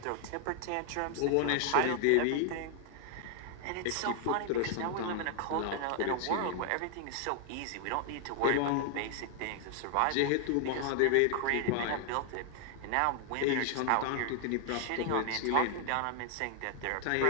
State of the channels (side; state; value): both; different; correlation 0.00